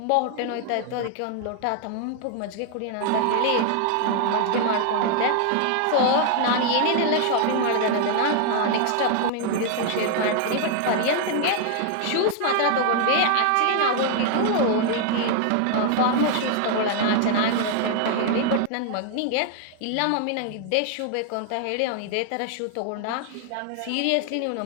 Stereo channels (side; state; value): both; different; correlation 0.00